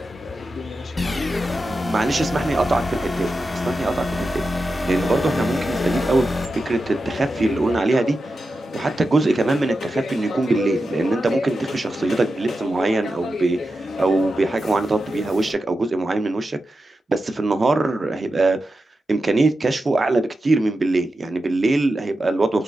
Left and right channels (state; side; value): normal; both; correlation 0.90